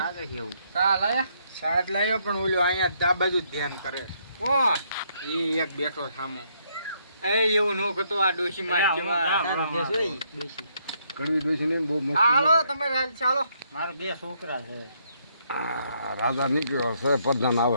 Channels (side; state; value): both; inverted; correlation -0.72